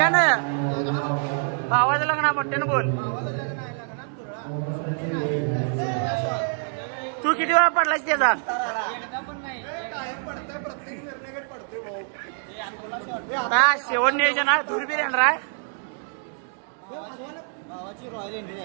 भावाचं लग्न आहे मोठ्यानं बोल तू किती वेळा पडलास त्याचा काय शेवट नियोजन आहे दुर्बीर येणार आहे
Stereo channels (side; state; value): left; silent; 56 dB below the other